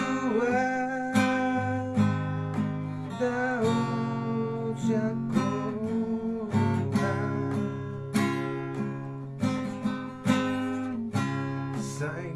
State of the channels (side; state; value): both; identical; correlation 1.00